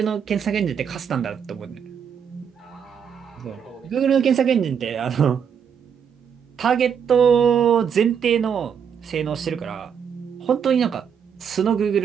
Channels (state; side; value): quieter; left; 7.5 dB